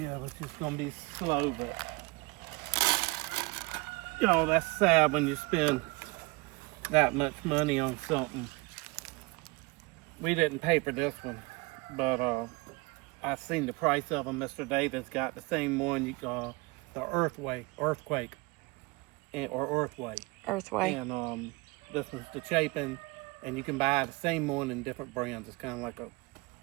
it's just going to be slow, but... Y'all, that's sad when you spend that much money on something. We didn't pay for this one, but I seen the price of them. Mr. Davis got the same one, the Earthway, or Earthway. Earthway. And this one's the Chapin, and you can buy the same one in different brands. It's kind of like a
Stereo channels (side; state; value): left; quieter; 25.5 dB